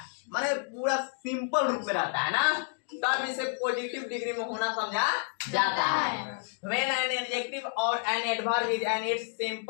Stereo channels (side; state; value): right; silent; 58 dB below the other